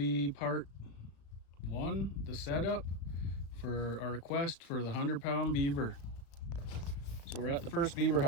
part one, the setup for our request for the 100-pound beaver. So we're at the first beaver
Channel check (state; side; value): late; right; 35 ms